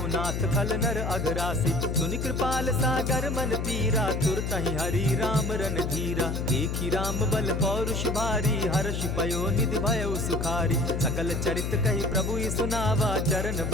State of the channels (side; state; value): left; noise; hum, 2 dB below the sound